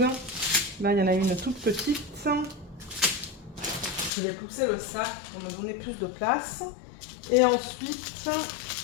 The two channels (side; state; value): right; drops out; at 4.1 s